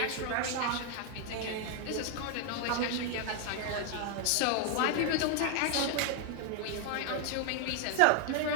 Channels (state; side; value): different; both; correlation 0.00